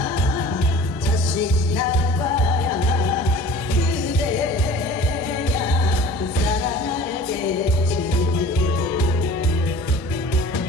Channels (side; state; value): both; normal; correlation 0.44